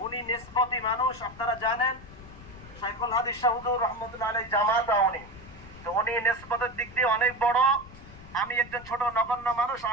উনি নিসবতি মানুষ, আপনারা জানেন শাইখুল হাদিস শাহ হুজুর রহমতুল্লাহ আলাইহি জামাত উনি, তো উনি নিসবতের দিক দিয়ে অনেক বড়, আমি একজন ছোট নগণ্য মানুষ,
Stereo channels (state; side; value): noise; left; rumble, 18 dB below the sound